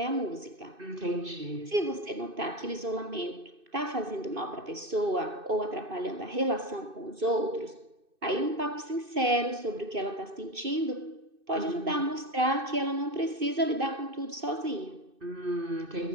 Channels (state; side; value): late; left; 2.6 ms